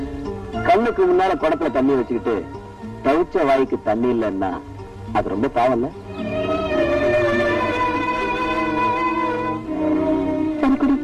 கண்ணுக்கு முன்னால குடத்துல தண்ணி வச்சுக்கிட்டு தவிச்ச வாய்க்கு தண்ணி இல்லைன்னா அது ரொம்ப பாவம் இல்ல? சரி குடி.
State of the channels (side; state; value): both; identical; correlation 1.00